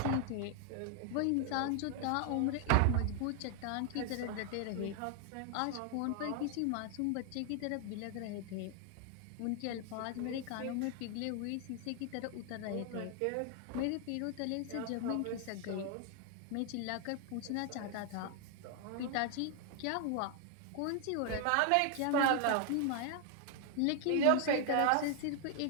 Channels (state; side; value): different; both; correlation 0.00